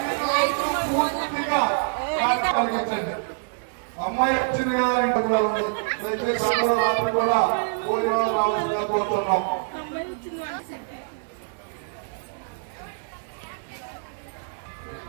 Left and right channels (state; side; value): silent; left; digital silence